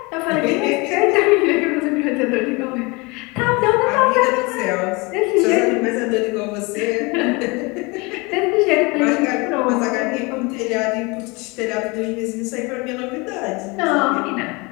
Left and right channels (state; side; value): quieter; right; 26.7 dB